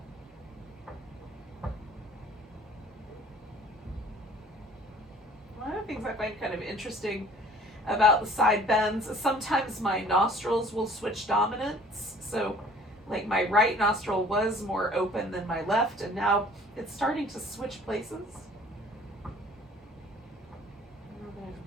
One of the things I find kind of interesting about the side bends is sometimes my nostrils will switch dominance. So, like, my right nostril was more open than my left, and now it's starting to switch places.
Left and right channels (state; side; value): normal; both; correlation 0.52